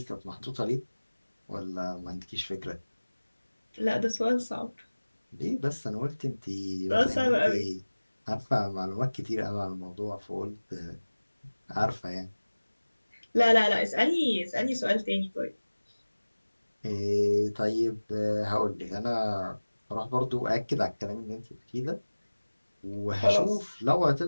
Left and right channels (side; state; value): both; inverted; correlation -1.00